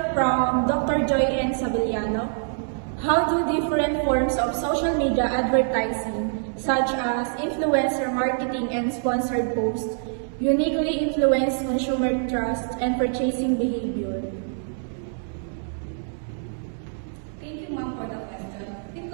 from Dr. Joy N. Sabillano. How do different forms of social media advertising, such as influencer marketing and sponsored posts, uniquely influence consumer trust and purchasing behavior? Thank you, ma'am, for the question.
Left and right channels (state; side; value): silent; left; 62 dB below the other